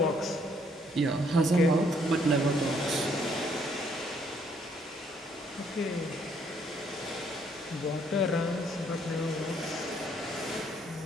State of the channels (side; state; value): both; normal; correlation 0.67